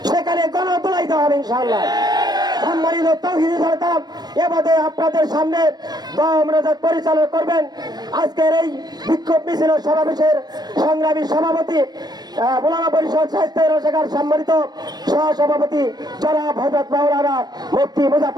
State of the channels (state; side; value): late; left; 0.19 ms